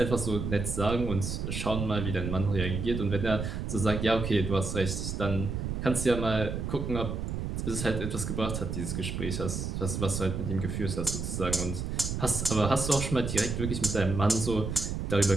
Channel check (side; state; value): right; noise; rumble, 3 dB below the sound